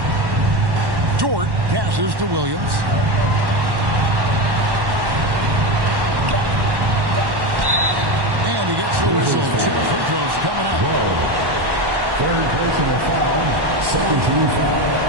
Dort passes to Williams. And he gets the whistle. 2 free throws coming up. Third personal foul. Second team foul.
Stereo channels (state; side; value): late; left; 1.1 ms